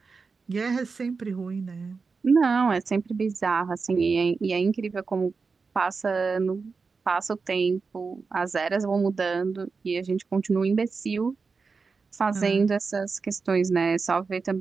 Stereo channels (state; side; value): quieter; left; 4.7 dB